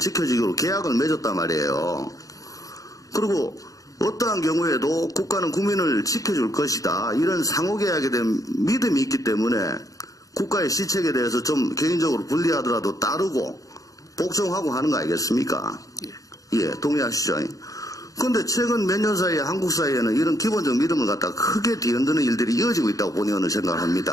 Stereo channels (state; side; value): late; right; 0.17 ms